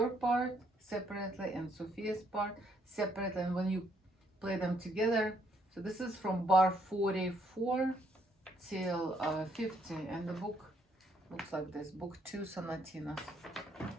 part separately and Sophia's part separately. And when you play them together, so this is from bar 44 till 50, and the book looks like this. Book 2, Sonatinas.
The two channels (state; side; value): normal; both; correlation 0.71